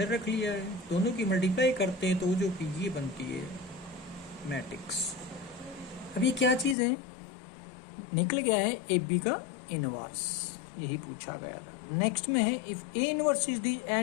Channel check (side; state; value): right; drops out; at 6.8 s